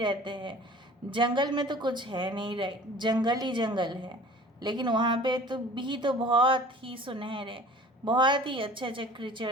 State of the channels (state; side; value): normal; both; correlation 0.46